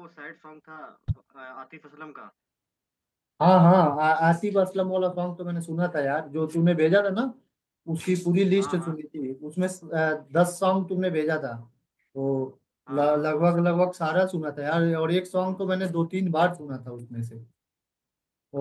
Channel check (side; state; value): both; identical; correlation 1.00